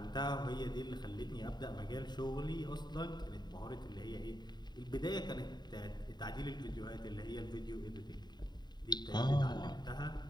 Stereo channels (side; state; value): right; late; 0.21 ms